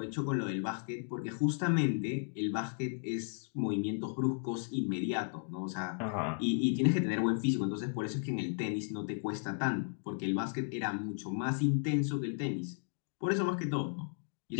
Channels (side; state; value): right; silent; digital silence